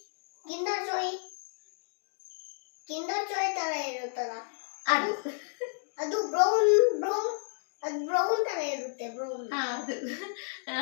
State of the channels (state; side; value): silent; right; digital silence